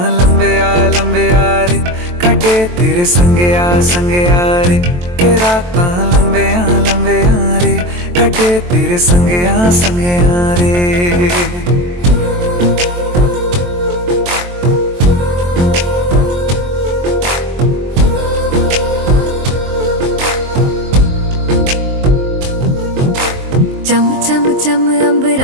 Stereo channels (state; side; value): late; left; 23 ms